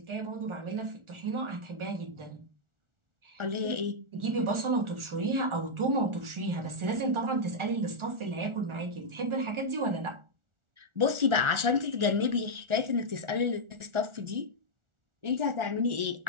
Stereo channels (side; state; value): left; late; 1.4 ms